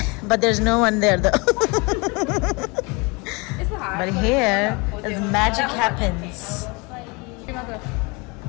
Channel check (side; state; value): right; quieter; 28.5 dB